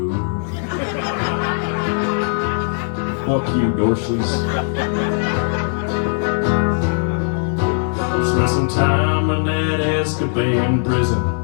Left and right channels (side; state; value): right; silent; 65 dB below the other